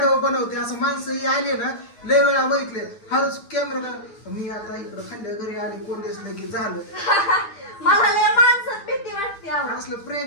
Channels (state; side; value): late; right; 10 ms